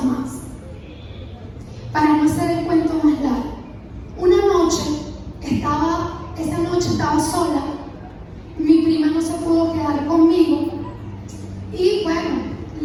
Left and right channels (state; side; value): identical; both; correlation 1.00